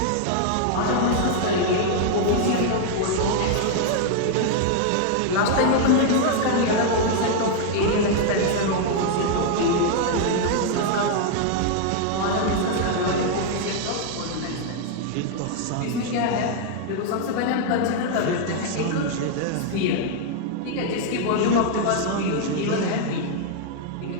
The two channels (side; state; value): both; different; correlation 0.00